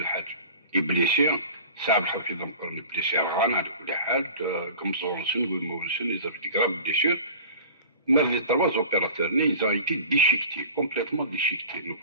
يبليسي ساعة الحفيظ نقول بليسي غانا على كل حال كمزونسون ومونسون يزرق دي غراب بليسير Mais les 3 opérateurs, ils ont été déchiquetés, complètement déchiquetés. Nous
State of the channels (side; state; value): both; inverted; correlation -0.40